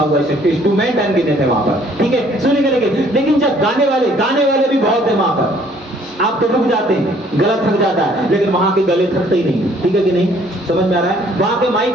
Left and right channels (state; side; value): normal; both; correlation 0.60